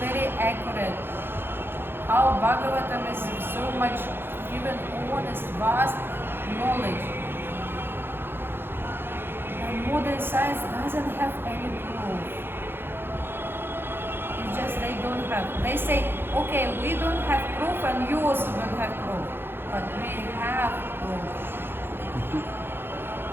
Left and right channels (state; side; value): late; left; 0.10 ms